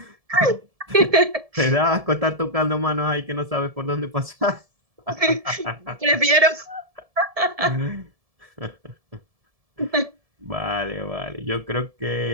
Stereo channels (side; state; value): left; late; 1.7 ms